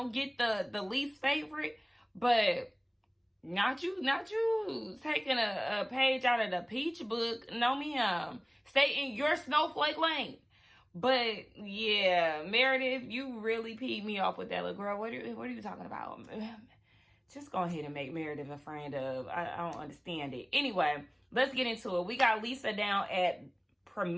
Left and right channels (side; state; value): both; identical; correlation 1.00